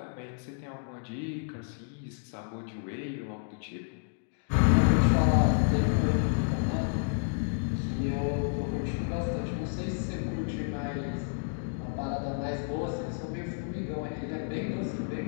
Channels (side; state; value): right; silent; digital silence